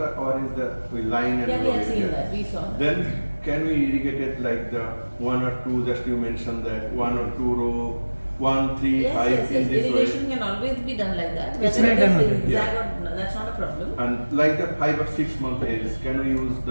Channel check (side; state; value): both; inverted; correlation -1.00